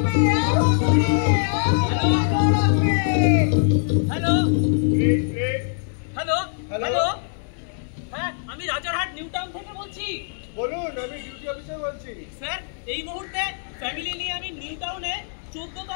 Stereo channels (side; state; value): right; silent; 63 dB below the other